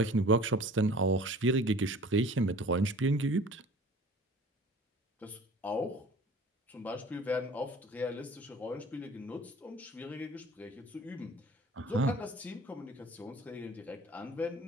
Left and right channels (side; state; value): both; normal; correlation 0.46